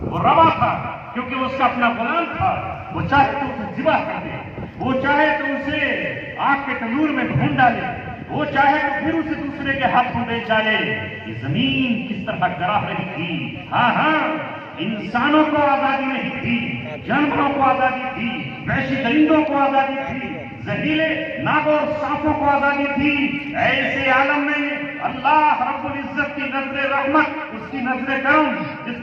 وہ روا تھا، کیونکہ وہ اس کا اپنا غلام تھا۔ وہ چاہے تو اسے ذبح کر دے، وہ چاہے تو اسے آگ کے تنور میں بھون ڈالے، وہ چاہے تو پھر اسے دوسرے کے ہاتھوں بیچ ڈالے۔ یہ زمین کس طرح گراہ رہی تھی، ہاں انسانوں کو آزادی نہیں تھی، جانوروں کو آزادی تھی، وحشی درندوں کو آزادی تھی، زہریلے ناگوں اور سانپوں کو آزادی تھی۔ ایسے عالم میں اللہ رب العزت کی نظر رحمت، اس کی نظر کرم جس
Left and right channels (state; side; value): identical; both; correlation 1.00